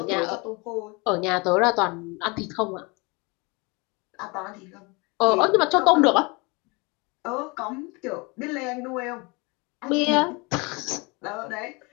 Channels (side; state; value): right; quieter; 28.1 dB